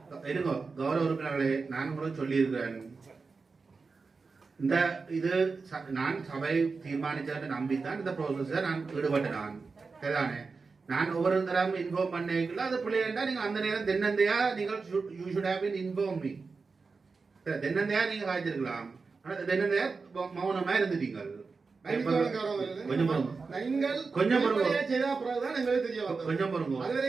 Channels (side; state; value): left; quieter; 4.5 dB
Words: இருங்கோ. கௌரவ உறுப்பினர்களே, நான் உங்களுக்கு சொல்லி இருக்கிறேன், இந்த இது நான் சபை தீர்மானிச்சதை நம்பித்தான் இந்த ப்ரோசஸ நான் ஈடுபட்டேன். நான் சரிதானே, நான் ஒவ்வொரு தரம் இன்ஃபார்ம் பண்ணிக்கல அது பிள்ளைண்டா நீங்க அந்த நேரம் தென்னந்தையா நீங்கள் you should have been inform me. தென்னந்தையா நீங்க காய்ச்சிருக்கலாம், ஆனா தென்னந்தையா மௌனமா இருந்துட்டீங்க. கொஞ்சம்